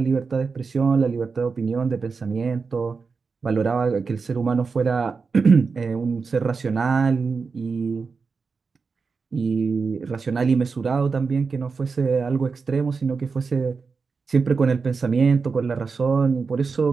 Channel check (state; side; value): quieter; left; 4.9 dB